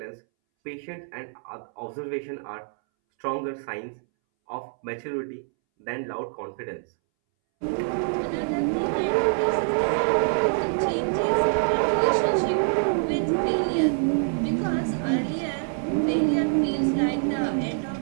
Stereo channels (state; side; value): silent; left; 61 dB below the other